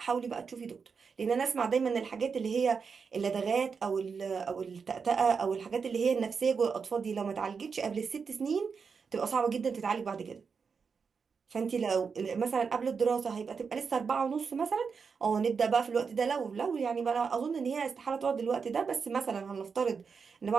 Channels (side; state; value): left; quieter; 5.6 dB